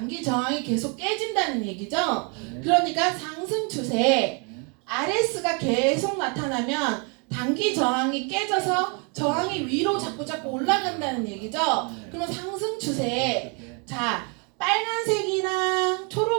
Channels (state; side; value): quieter; left; 34.8 dB